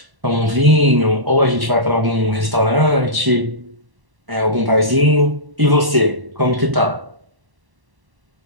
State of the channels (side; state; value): left; late; 1.1 ms